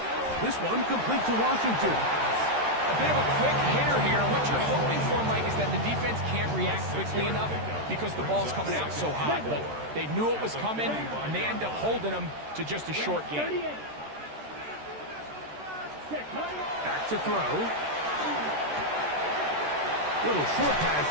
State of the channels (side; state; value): left; late; 13 ms